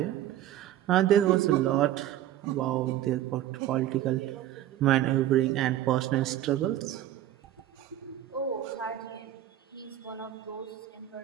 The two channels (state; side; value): quieter; left; 12.7 dB